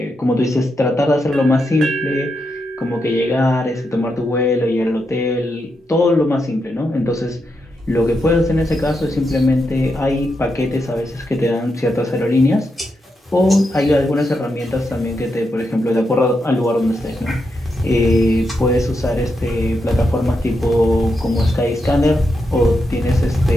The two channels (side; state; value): both; normal; correlation 0.84